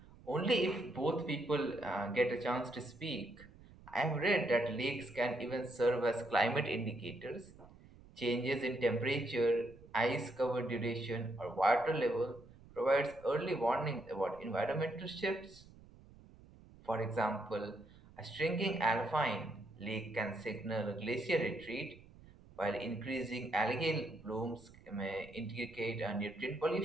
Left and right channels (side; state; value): right; noise; rumble, 22 dB below the sound